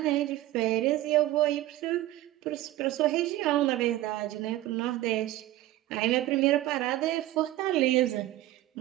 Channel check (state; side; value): quieter; left; 15.6 dB